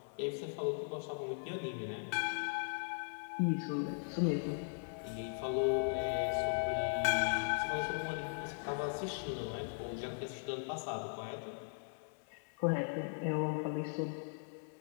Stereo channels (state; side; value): silent; right; 52 dB below the other